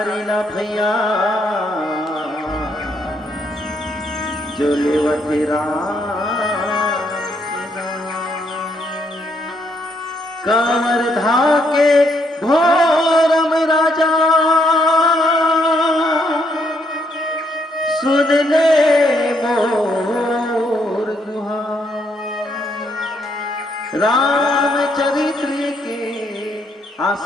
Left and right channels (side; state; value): both; normal; correlation 0.73